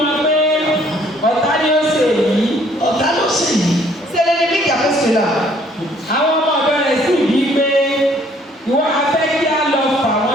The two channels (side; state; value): both; normal; correlation 0.61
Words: wa pé ọ̀tá ni ó ṣe èyí. Ọ̀tá ló sì yìí. C'est l'ennemi qui a fait cela. Àwọn ọmọ ọ̀dọ́ rẹ̀ sì bí pé ìwọ afẹ́ kí á lọ fà